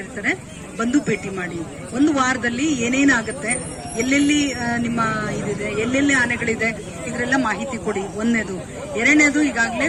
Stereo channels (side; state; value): both; identical; correlation 1.00